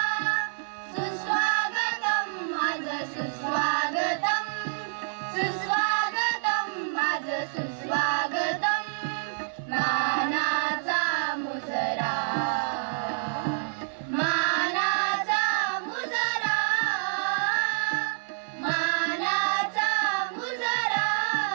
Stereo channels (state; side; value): silent; left; 60 dB below the other